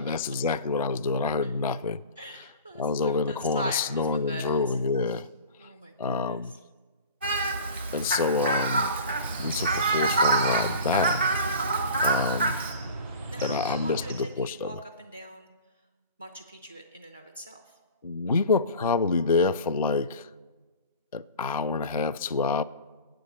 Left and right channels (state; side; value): inverted; both; correlation -0.39